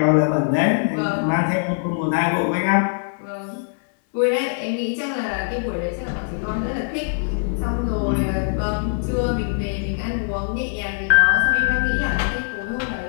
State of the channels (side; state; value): right; silent; 60 dB below the other